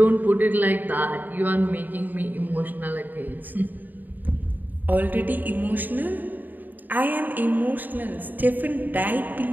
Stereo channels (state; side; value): late; left; 0.087 ms